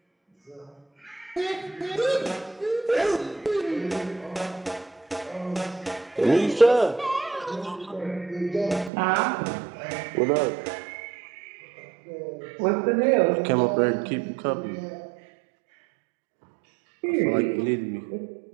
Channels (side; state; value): left; drops out; at 8.9 s